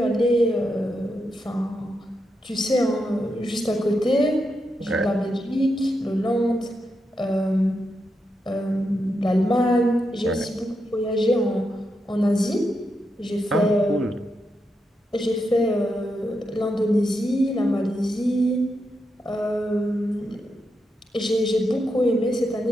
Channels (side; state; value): both; normal; correlation 0.85